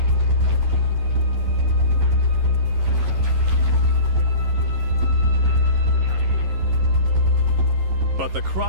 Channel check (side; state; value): left; late; 11 ms